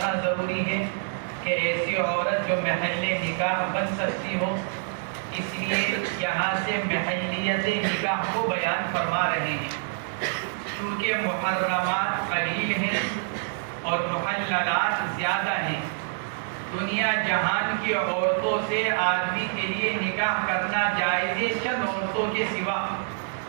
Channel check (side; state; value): left; silent; digital silence